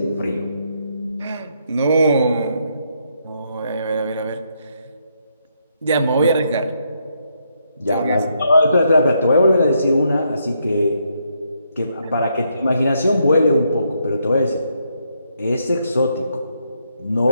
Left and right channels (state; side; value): inverted; both; correlation -0.76